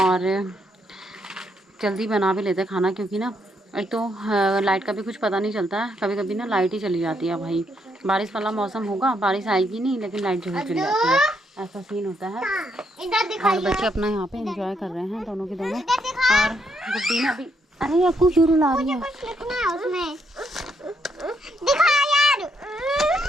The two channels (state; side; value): normal; both; correlation 0.75